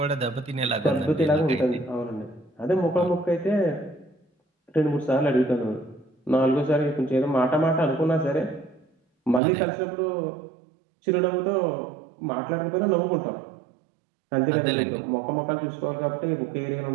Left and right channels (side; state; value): left; drops out; at 9.4 s